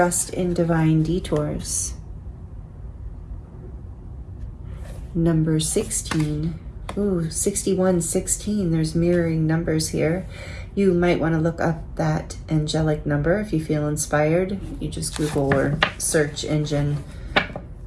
in divine detours. Number 16. Ooh, 61, 16. There's mirroring numbers here. You might want to look up that angelic number if you feel inspired. You just Google or search engine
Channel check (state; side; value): identical; both; correlation 1.00